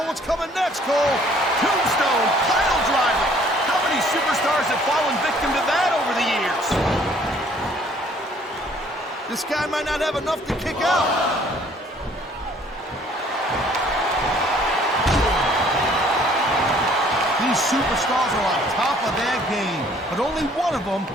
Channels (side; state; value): both; normal; correlation 0.59